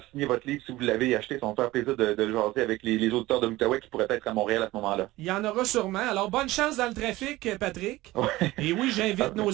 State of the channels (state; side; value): quieter; left; 18.2 dB